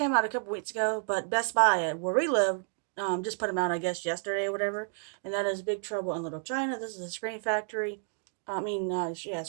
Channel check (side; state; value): left; silent; 57 dB below the other